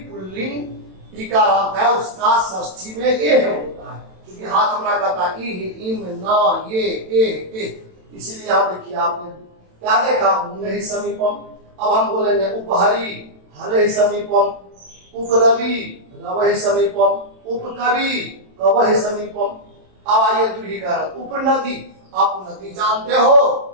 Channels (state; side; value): late; left; 27 ms